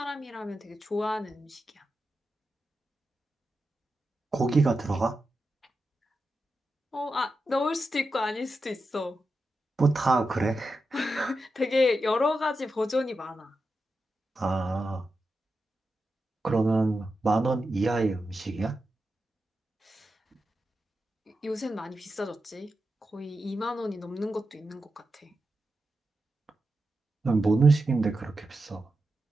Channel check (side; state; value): both; normal; correlation 0.89